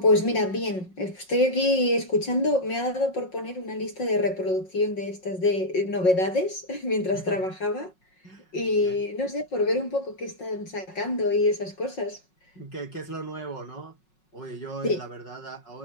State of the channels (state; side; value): late; right; 5.4 ms